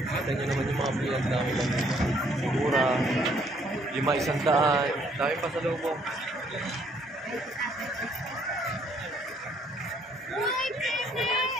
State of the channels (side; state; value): both; normal; correlation 0.65